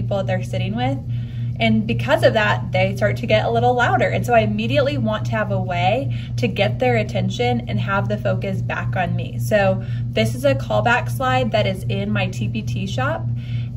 that they're sitting with. And because of that, they start to get a little louder. And so I immediately want to have a way to get their attention and have the focus back on me. So this is a callback slide that is in my TPT shop.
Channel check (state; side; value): identical; both; correlation 1.00